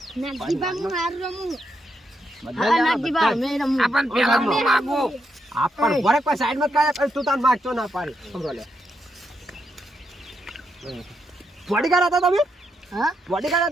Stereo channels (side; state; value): both; normal; correlation 0.81